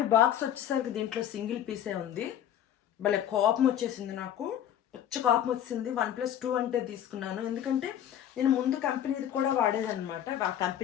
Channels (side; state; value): right; quieter; 10.4 dB